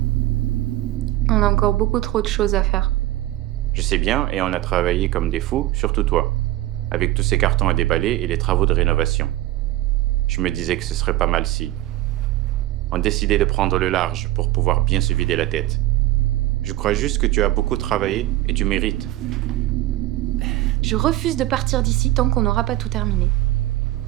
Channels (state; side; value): quieter; left; 15.5 dB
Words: On a encore beaucoup trop de choses à faire. Je sais bien, et on a travaillé comme des fous, surtout toi, avec tous ces cartons à déballer et les travaux de rénovation. Je me disais que ce serait pas mal si on décidait de prendre le large pour pouvoir bien se vider la tête. Je crois juste que tu as beaucoup travaillé et tu mérites. Je refuse de partir d'ici tant qu'on n'aura pas tout terminé.